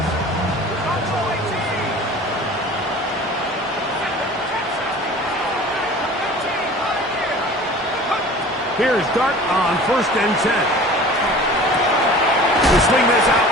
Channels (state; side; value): normal; both; correlation 0.42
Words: Here's Dart on 1st and 10. We'll swing this out